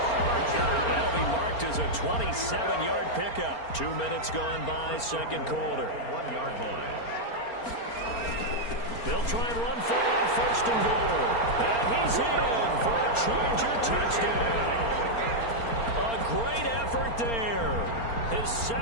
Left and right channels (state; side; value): late; right; 4.3 ms